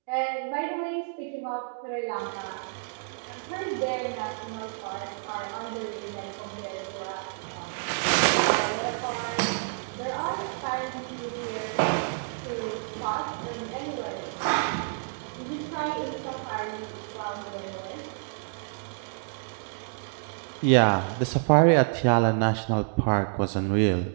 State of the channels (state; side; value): silent; left; digital silence